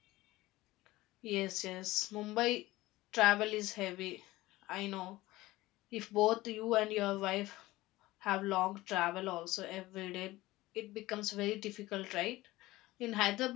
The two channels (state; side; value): quieter; right; 18.2 dB